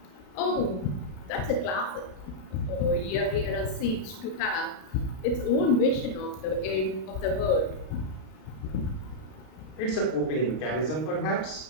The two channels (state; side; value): late; right; 32 ms